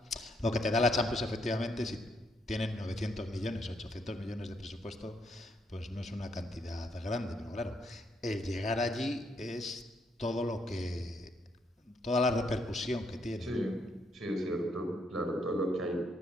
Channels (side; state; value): both; normal; correlation 0.74